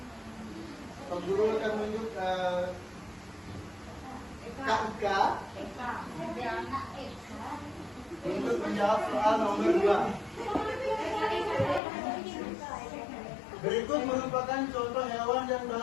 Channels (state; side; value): drops out; right; at 11.8 s